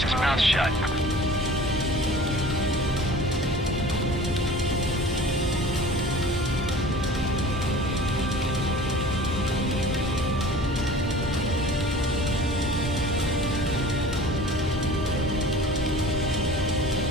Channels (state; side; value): normal; both; correlation 0.43